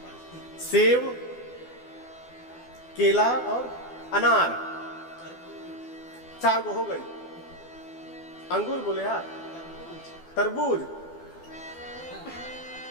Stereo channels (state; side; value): late; right; 12 ms